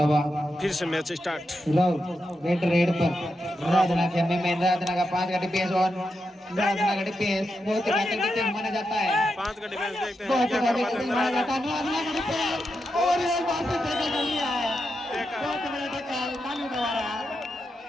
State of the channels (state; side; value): normal; both; correlation 0.87